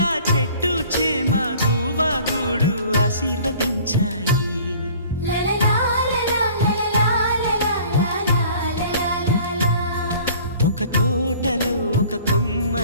చెట్టు చేమ గువగూడు ఆశీర్వదించాయి. ఒక తోటలో ఒక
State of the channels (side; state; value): both; inverted; correlation -0.50